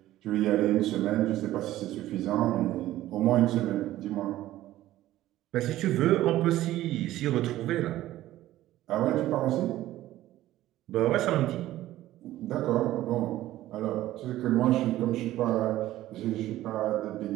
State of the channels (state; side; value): quieter; left; 14.7 dB